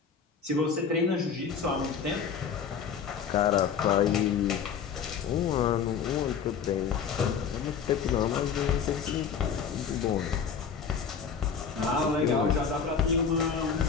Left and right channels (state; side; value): quieter; right; 6.7 dB